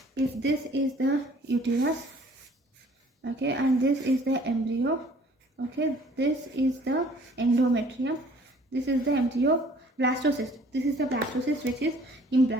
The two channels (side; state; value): both; normal; correlation 0.55